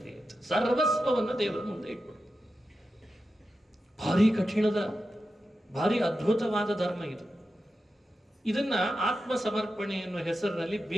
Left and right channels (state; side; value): normal; both; correlation 0.90